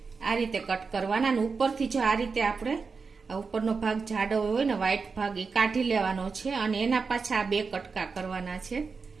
આ રીતે કટ કરવાના અને ઉપરથી જો આ રીતે આપણે ઉપરનો ભાગ જાડો હોય ને વ્હાઈટ ભાગ એ કાઢી લેવાનો છે અને એના પાછા આ બે કટકા કરવાના છે,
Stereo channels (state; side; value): quieter; left; 4.9 dB